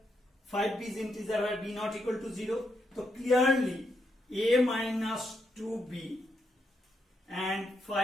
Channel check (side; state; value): both; normal; correlation 0.80